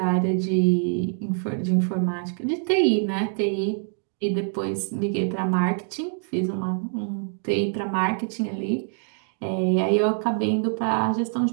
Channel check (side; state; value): left; silent; 60 dB below the other